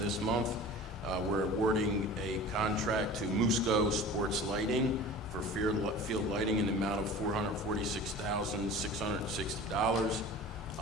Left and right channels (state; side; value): normal; both; correlation 0.39